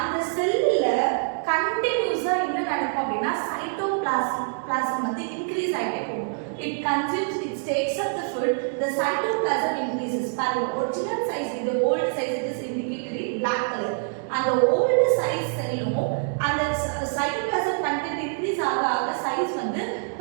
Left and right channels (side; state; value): left; silent; digital silence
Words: செல்லுல கண்டினியூஸா என்ன நடக்கும் அப்படின்னா சைட்டோபிளாசம் வந்து இன்க்ரீஸ் ஆகிட்டே போகும். It consumes, it takes up the food, the cytoplasm increases. Original size, the old size it is indicated in black color. And the old size cell and the cytoplasm content increase ஆக size வந்து